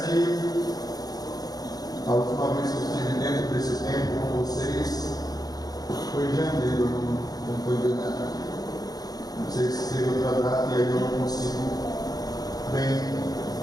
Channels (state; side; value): late; right; 0.19 ms